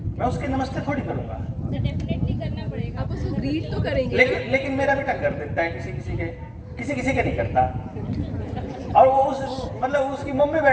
मैं उसके नमस्ते थोड़ी करूंगा। तो डेफिनेटली करना पड़ेगा। आप उसको ग्रीट तो करेंगे। लेकिन मेरा बेटा कर देता है, किसी के नहीं करता। और वो मतलब उसकी मम्मी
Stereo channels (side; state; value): both; identical; correlation 1.00